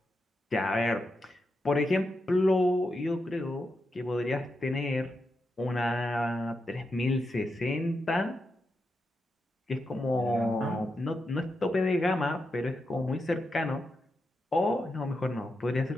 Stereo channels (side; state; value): both; normal; correlation 0.86